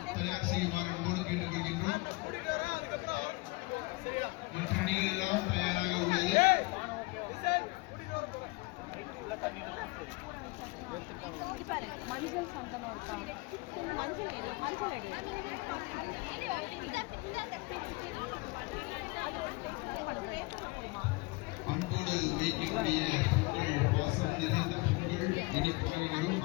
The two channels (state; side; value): quieter; right; 24.5 dB